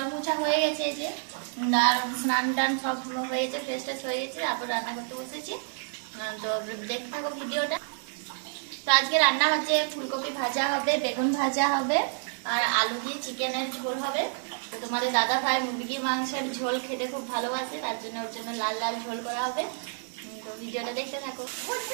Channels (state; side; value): silent; left; 59 dB below the other